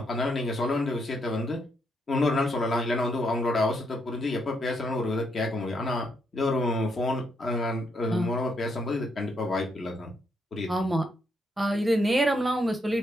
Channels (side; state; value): both; normal; correlation 0.76